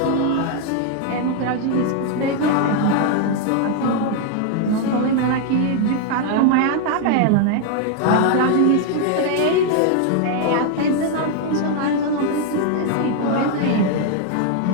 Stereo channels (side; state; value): both; different; correlation 0.00